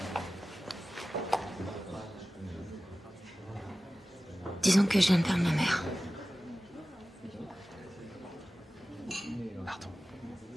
Disons que je viens de perdre ma mère. Pardon.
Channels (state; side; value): normal; both; correlation 0.96